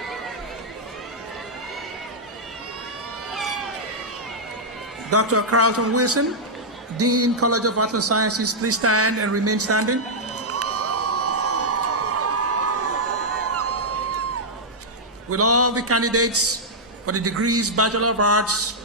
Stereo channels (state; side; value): normal; both; correlation -0.07